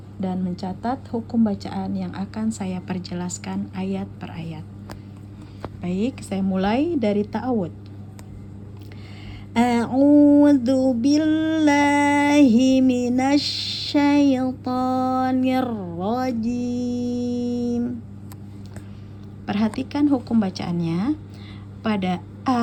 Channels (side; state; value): both; identical; correlation 1.00